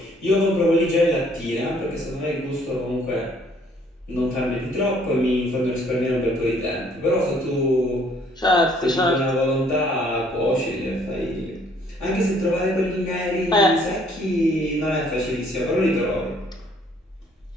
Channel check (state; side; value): normal; both; correlation 0.62